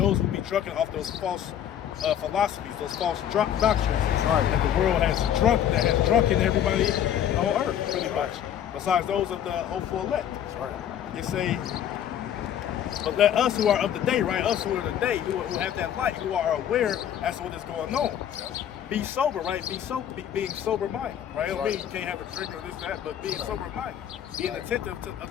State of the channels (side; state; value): right; quieter; 10.0 dB